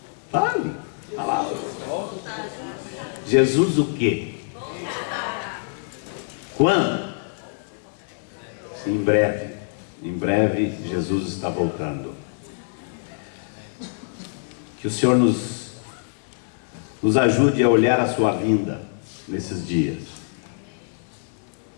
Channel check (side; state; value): right; silent; 62 dB below the other